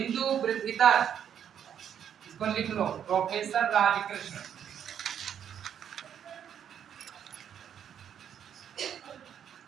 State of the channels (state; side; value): quieter; left; 9.0 dB